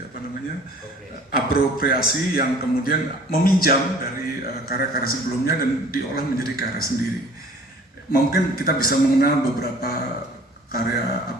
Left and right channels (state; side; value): normal; both; correlation 0.50